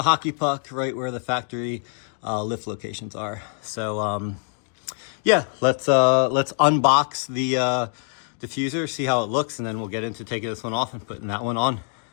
hockey puck, right where the factory lift locations are. So yeah, let's unbox the diffuser, see how it looks, and then we'll get into taking this one off and putting that one on.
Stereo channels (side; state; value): right; silent; 56 dB below the other